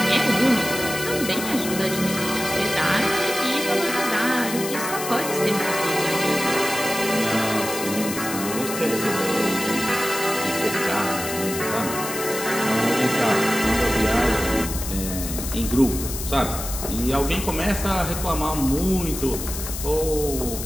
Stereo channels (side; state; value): left; noise; hiss, 7 dB below the sound